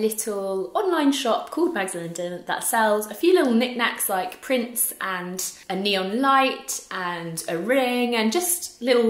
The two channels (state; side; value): identical; both; correlation 1.00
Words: online shop called Mags London that sells a few little knickknacks like prints and a neon light and a ring and just